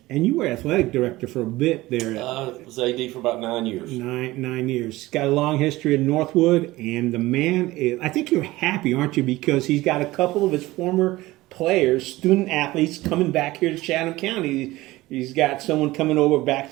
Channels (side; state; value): left; quieter; 18.6 dB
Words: and you were athletic director for a bit there. I was AD for about 9 years. 9 years. He's got a long history in Northwood, and the man is, I think you're happy, aren't you? Because he's got a couple of his former players, student athletes, coming back here to Chatham County. He's got someone coming over